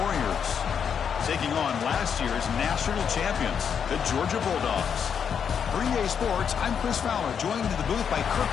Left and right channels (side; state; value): right; quieter; 7.4 dB